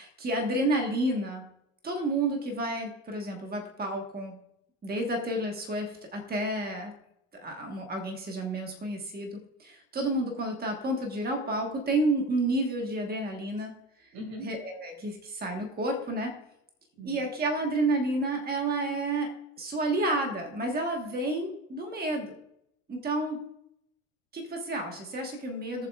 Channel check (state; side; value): normal; both; correlation 0.29